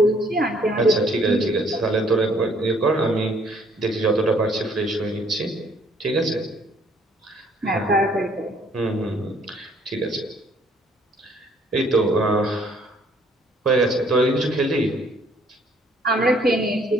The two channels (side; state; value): both; normal; correlation 0.63